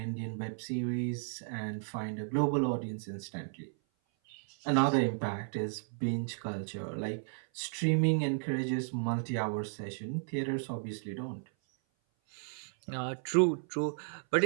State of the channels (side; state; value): left; silent; 55 dB below the other